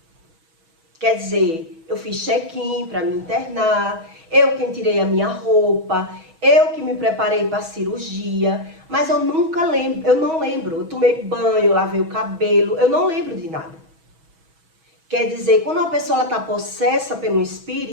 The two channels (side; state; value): left; late; 6.2 ms